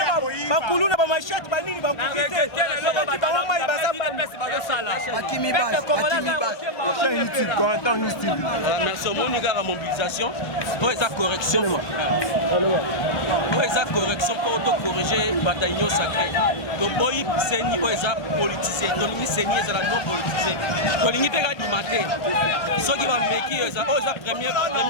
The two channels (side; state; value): right; late; 1.3 ms